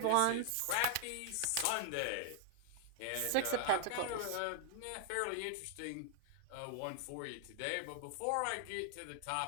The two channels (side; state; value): both; different; correlation 0.00